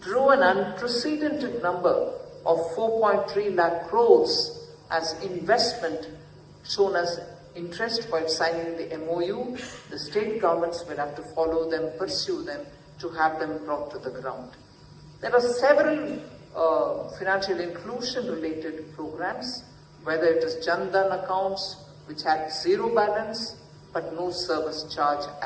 drew an unprecedented number of 4.3 lakh crores as investment shown as interest while signing the MOU. The state governments will have to follow them, pursue them to have them brought to the ground. There are several financial inclusion related programs, whether it is Jan Dhan accounts, which had zero balance but no service charge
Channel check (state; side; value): identical; both; correlation 1.00